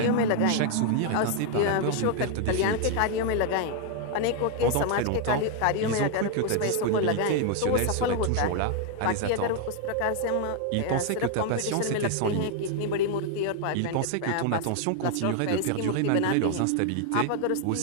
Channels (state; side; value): different; both; correlation 0.00